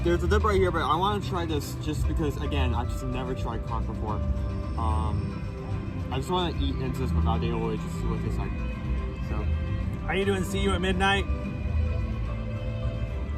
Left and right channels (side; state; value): both; identical; correlation 1.00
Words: a dip right here, but I want to try this just because, again, I've just never tried conch before. I just want to eat into this without the aioli, just see what it tastes like. So, how you doing? See you at midnight.